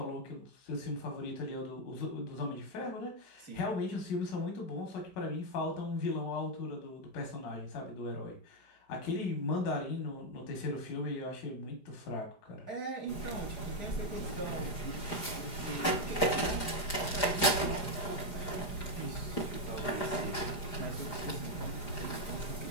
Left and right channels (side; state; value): right; late; 4.9 ms